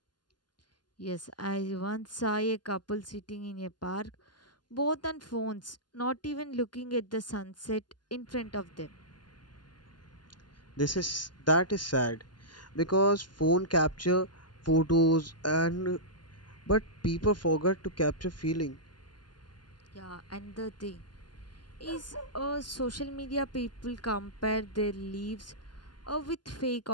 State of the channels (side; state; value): right; late; 0.71 ms